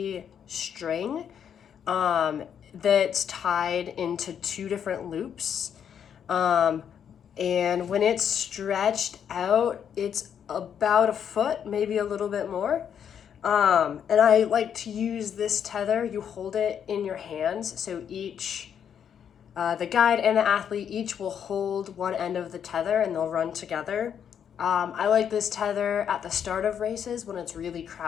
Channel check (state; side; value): quieter; right; 8.4 dB